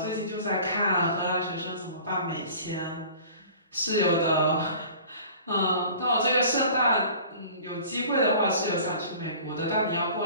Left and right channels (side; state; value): both; inverted; correlation -0.45